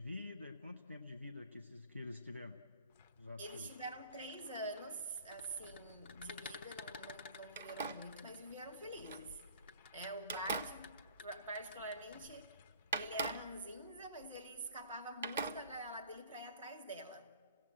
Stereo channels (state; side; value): inverted; both; correlation -0.49